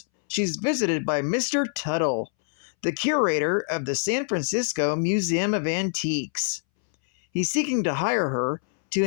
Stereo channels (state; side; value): silent; right; 62 dB below the other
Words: she's visited by Mr. Tuttle, the curator of the San Francisco Museum of Antiques. He's seeking to hire her to